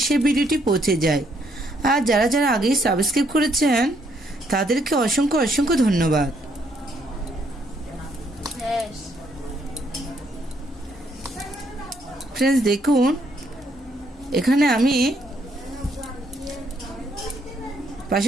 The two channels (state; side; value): normal; both; correlation 0.71